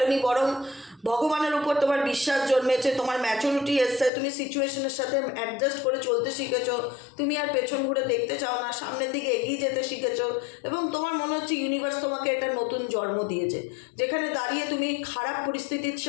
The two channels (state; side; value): drops out; right; at 4.1 s